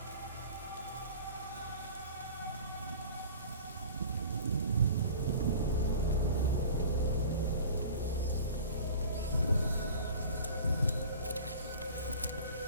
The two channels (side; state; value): both; inverted; correlation -0.42